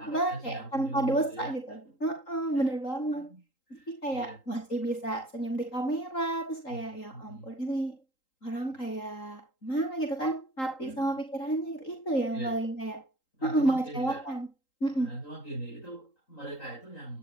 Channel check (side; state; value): right; late; 3.8 ms